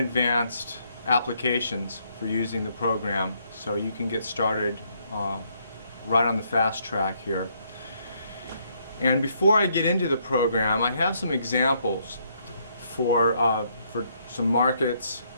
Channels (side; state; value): both; inverted; correlation -0.72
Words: applications for using the program so you can get started right on the fast track here. And before I get into the program, I have some examples for some markets